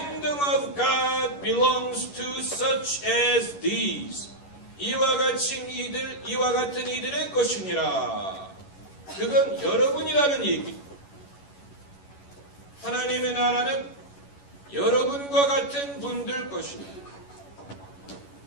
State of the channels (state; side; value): late; right; 11 ms